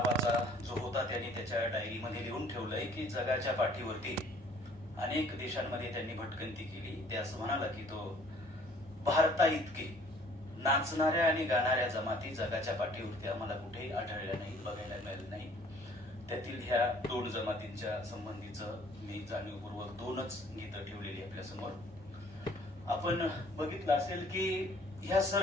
जो होता त्यांनी त्याच्या डायरीमध्ये लिहून ठेवलंय की जगाच्या पाठीवरती अनेक देशांमध्ये त्यांनी भटकंती केली. ते असं म्हणाला की तो भारता इतकी नाचणाऱ्या आणि गाणाऱ्या जमाती जगाच्या पाठीवरती आम्हाला कुठेही आढळल्या नाही, बघायला मिळालं नाही. त्यातील ह्या दोन जमातींच्या संबंधीचं मी जाणीवपूर्वक दोनच गीतं ठेवलेली आपल्या समोर. आपण बघितलं असेल की ह्या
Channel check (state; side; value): normal; both; correlation 0.56